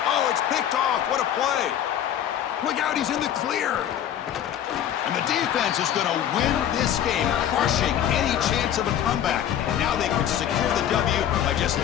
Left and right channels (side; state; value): right; quieter; 10.3 dB